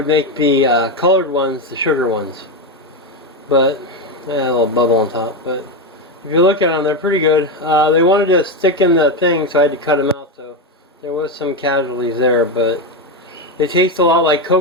make the colored ones the sugar ones. But, a little bubble on top. But if you look at them, they're pretty good. They wanted to stick in the thing, so I had to cut them out. So there was some casualties there, but they taste a lot like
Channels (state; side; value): normal; both; correlation 0.11